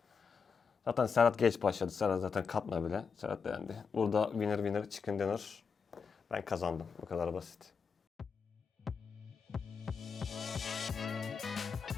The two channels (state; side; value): quieter; right; 5.7 dB